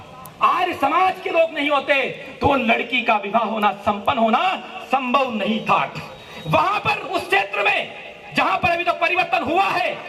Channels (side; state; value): both; identical; correlation 1.00